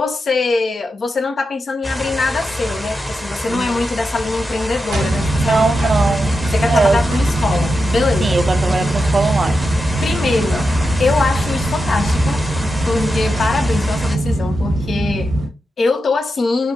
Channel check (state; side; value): normal; both; correlation 0.88